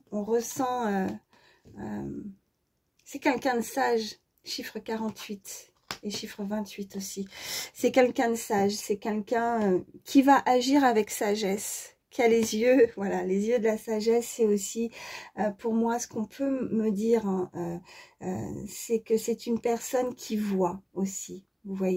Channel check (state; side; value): identical; both; correlation 1.00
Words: C'est quelqu'un de sage. Chiffre 48 et chiffre 28 aussi. C'est quelqu'un de sage. C'est quelqu'un qui va agir avec sagesse. Qui a les yeux, voilà, les yeux de la sagesse, c'est aussi, pour moi, ce qu'on peut me dire, hein, c'est que c'est une personne qui voit aussi, vous